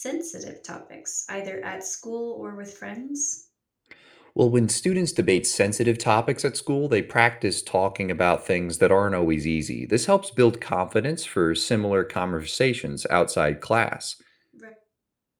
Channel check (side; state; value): both; identical; correlation 1.00